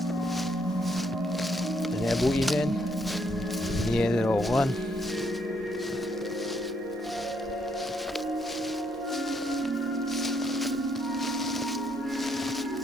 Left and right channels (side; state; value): both; normal; correlation 0.73